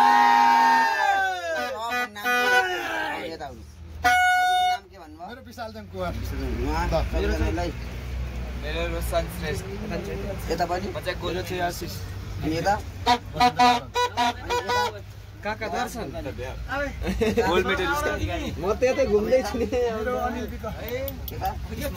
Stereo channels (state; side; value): identical; both; correlation 1.00